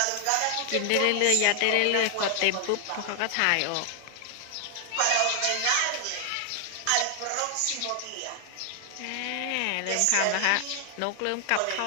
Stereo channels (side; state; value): both; different; correlation 0.00